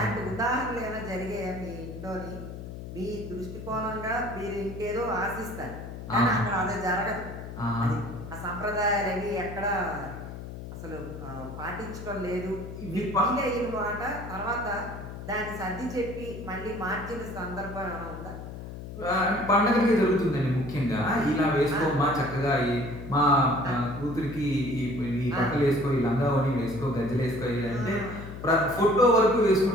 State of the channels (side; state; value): left; noise; hum, 10 dB below the sound